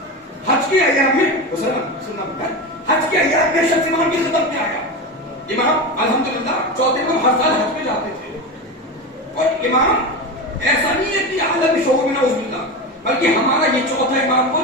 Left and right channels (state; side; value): normal; both; correlation 0.22